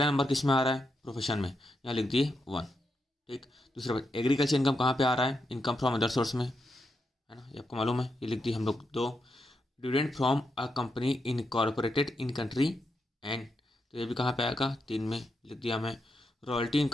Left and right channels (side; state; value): both; normal; correlation 0.84